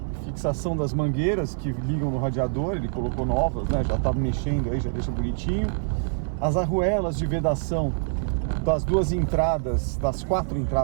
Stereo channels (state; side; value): silent; left; digital silence